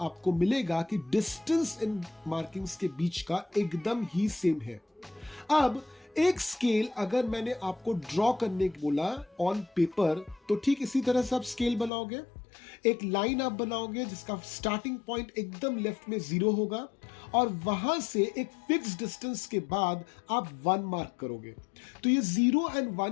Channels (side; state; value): right; drops out; at 11.9 s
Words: मिलेगा कि डिस्टेंस इन मार्किंग्स के बीच का एकदम ही सेम है। अब एक स्केल अगर मैंने आपको ड्रॉ करने को बोला ऑन पेपर, तो ठीक इसी तरह से आप स्केल बनाओगे। एक लाइन आप बनाओगे जिसका स्टार्टिंग पॉइंट एकदम लेफ्ट में 0 होगा और वहां से एक फिक्स डिस्टेंस के बाद आप 1 मार्क करोगे। तो ये 0 एंड